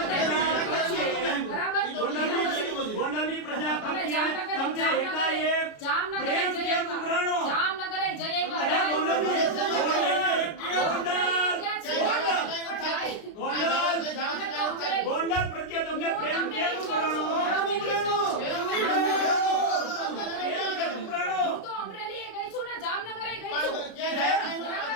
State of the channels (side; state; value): right; late; 33 ms